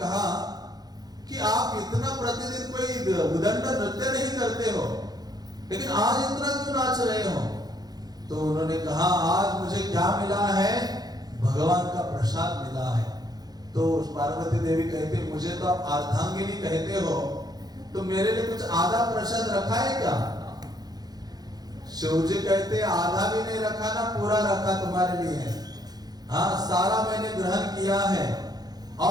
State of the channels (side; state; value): left; late; 0.19 ms